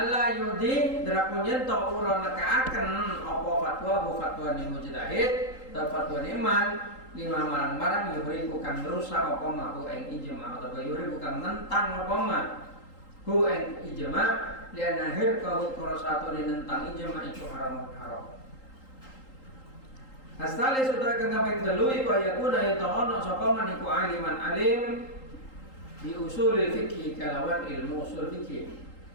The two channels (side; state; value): right; late; 3.8 ms